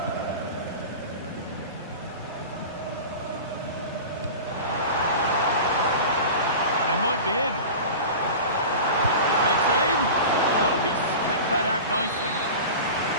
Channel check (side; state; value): both; inverted; correlation -0.33